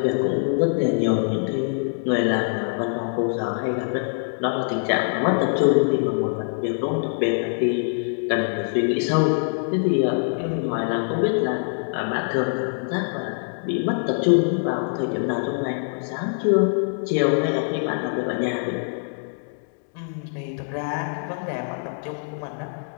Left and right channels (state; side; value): silent; right; digital silence